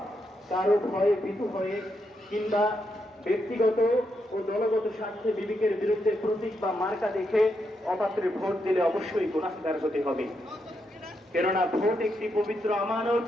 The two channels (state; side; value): normal; both; correlation 0.81